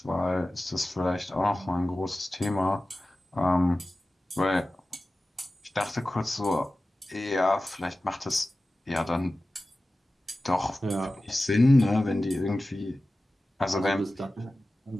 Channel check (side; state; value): both; normal; correlation 0.96